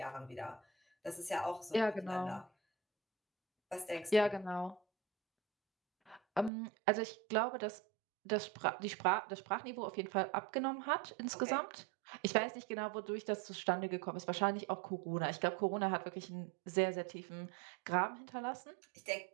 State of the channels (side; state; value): left; drops out; at 6.5 s